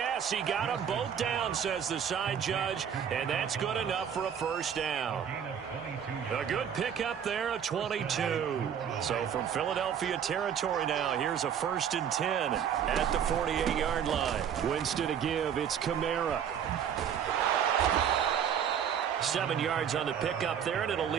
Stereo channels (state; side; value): quieter; left; 8.4 dB